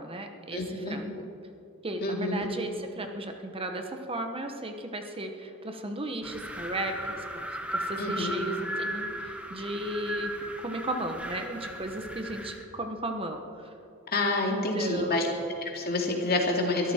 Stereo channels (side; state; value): both; normal; correlation 0.28